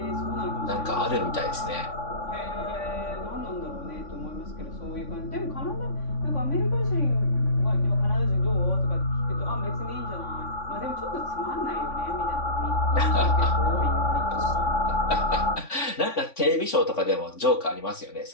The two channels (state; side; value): late; right; 3.5 ms